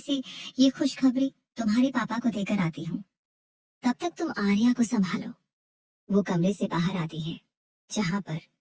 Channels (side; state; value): both; identical; correlation 1.00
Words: ये खुशखबरी तुम्हारे पापा को देकर आती हूँ। तब तक तुम आर्या को संभालो। वो कमरे से बाहर आती है जहाँ पर